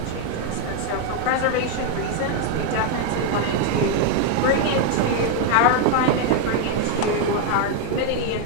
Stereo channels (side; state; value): both; different; correlation 0.01